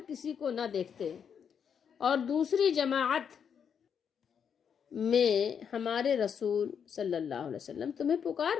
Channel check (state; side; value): quieter; right; 7.4 dB